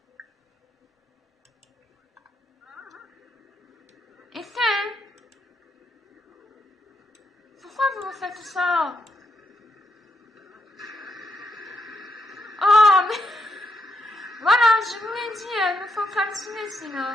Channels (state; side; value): normal; both; correlation 0.79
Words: Et c'est... Pourquoi vous me faites ça? Oh, mais... Voilà, je vous l'ai dit, il me faut calciner